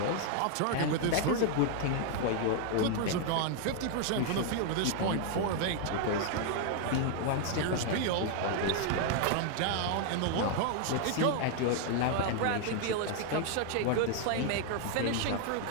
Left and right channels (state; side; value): different; both; correlation 0.00